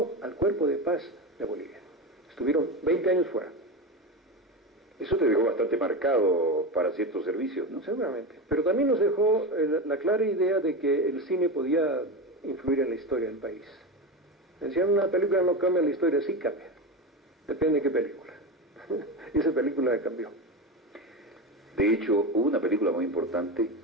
al Cuerpo de Paz de Bolivia. Estuvieron 20 años fuera. Eso te dejó bastante marcado para ciertos servicios, ¿no? Seguramente. Pero también nos dejó la clara idea de que el cine podía influir en la historia del país. Decían, una película no cambia la historia, sí cambia. Depende de qué película. Y esa película cambió. De hecho, hubo una película muy importante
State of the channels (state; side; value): normal; both; correlation 0.20